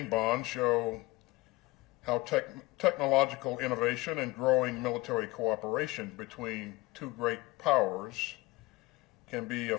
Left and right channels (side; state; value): right; quieter; 21.2 dB